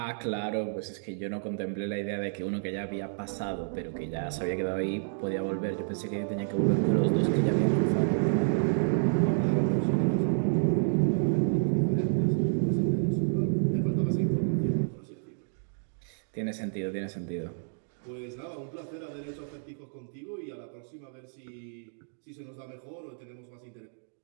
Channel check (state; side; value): silent; left; digital silence